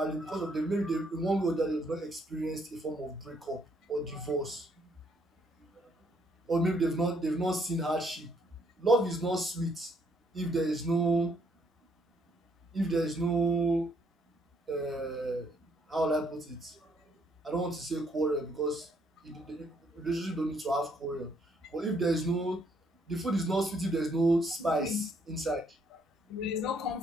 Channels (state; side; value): normal; both; correlation 0.69